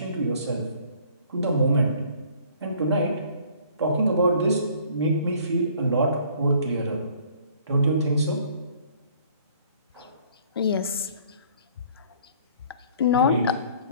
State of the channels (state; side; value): inverted; both; correlation -0.56